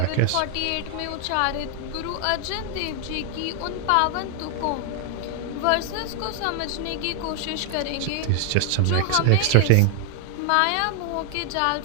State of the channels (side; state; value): both; different; correlation 0.00